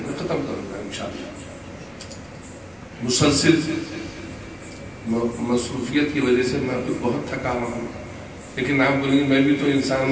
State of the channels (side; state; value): both; identical; correlation 1.00